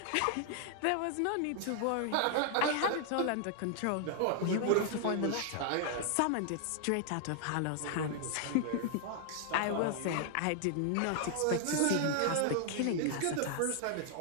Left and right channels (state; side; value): different; both; correlation 0.00